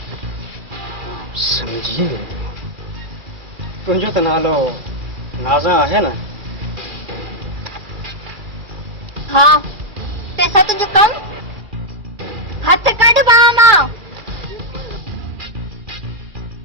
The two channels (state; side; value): late; left; 2.3 ms